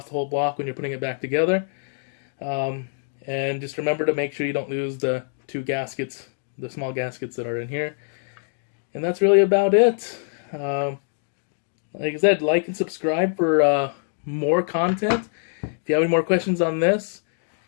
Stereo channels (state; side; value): silent; right; digital silence